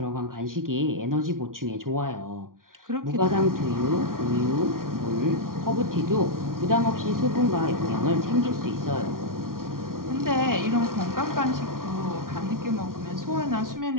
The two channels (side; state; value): left; late; 0.91 ms